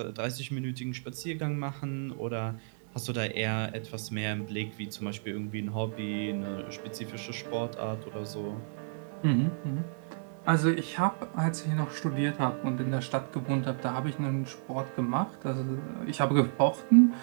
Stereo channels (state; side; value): silent; left; 57 dB below the other